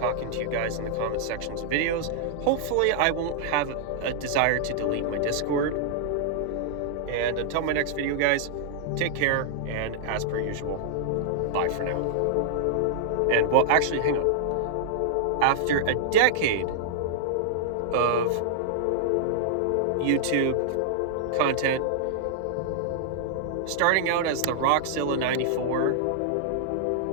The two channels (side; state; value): both; different; correlation -0.01